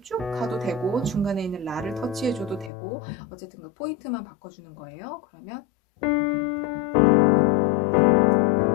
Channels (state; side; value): drops out; right; at 2.7 s